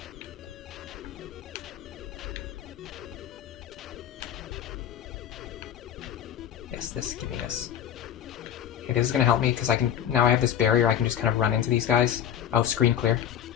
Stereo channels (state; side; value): quieter; right; 9.8 dB